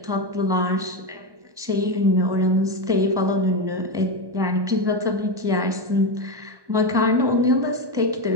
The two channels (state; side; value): late; left; 1.1 ms